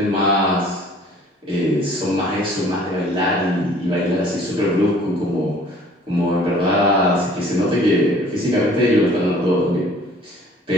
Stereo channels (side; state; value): both; normal; correlation 0.53